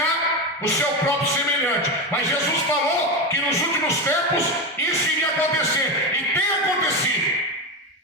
o seu próprio semelhante. Mas Jesus falou que nos últimos tempos isso iria acontecer. E tem acontecido.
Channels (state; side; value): normal; both; correlation 0.16